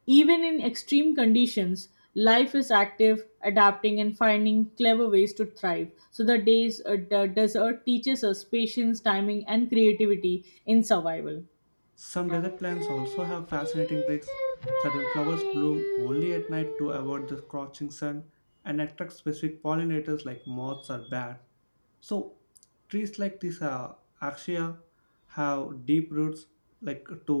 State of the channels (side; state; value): both; inverted; correlation -1.00